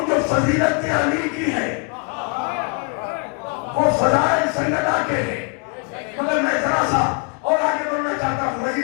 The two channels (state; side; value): quieter; right; 34.6 dB